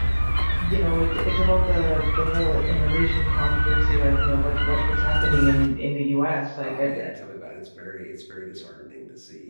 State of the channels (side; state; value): both; inverted; correlation -1.00